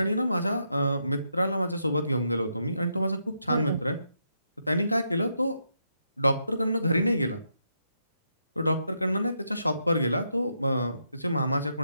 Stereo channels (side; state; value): both; inverted; correlation -0.81